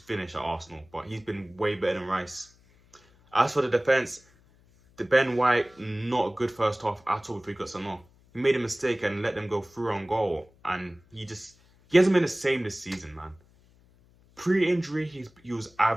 at Arsenal, but he's been way better than Rice. As for the defence, the Ben White, not a good first half at all before he got sent off. He made a mistake and let them go through on goal, and he hasn't been the same this season, man. Pre-injury, he was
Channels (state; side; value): noise; left; hum, 30 dB below the sound